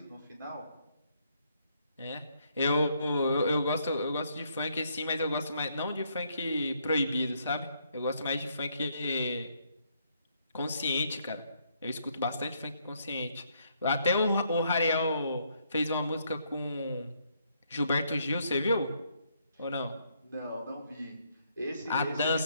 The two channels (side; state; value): both; inverted; correlation -0.72